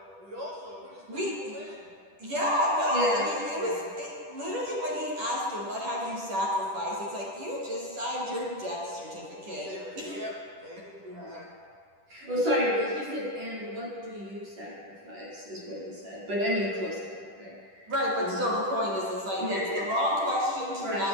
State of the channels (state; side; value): late; left; 10 ms